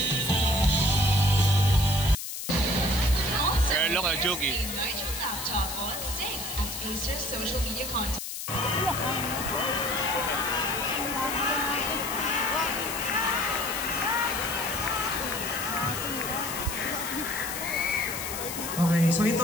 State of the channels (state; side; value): noise; left; hiss, 6 dB below the sound